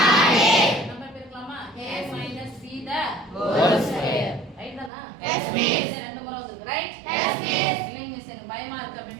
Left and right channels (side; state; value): left; drops out; at 4.9 s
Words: நம்பர் பெருக்கலாமா? a - b the whole square. Right தானா? Yes miss. ரெண்டு முறை வந்து ரைட்? Yes miss. இல்லைங்க மிஸ் எனக்கு பயமா இருக்கு அப்படி